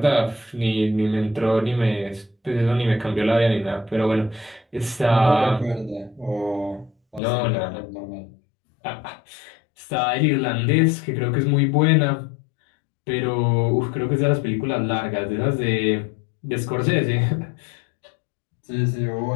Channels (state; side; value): drops out; right; at 7.2 s